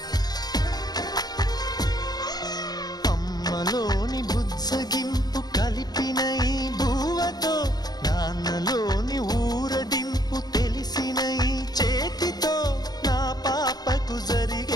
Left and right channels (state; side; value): late; right; 0.19 ms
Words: అమ్మలోని బుజ్జగింపు కలిపిన ఈ భూవతో నాన్నలోని ఊరడింపు తెలిసిన ఈ చేతితో నా పాపకు